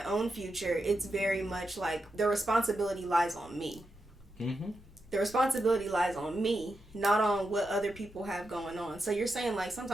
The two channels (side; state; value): both; normal; correlation 0.87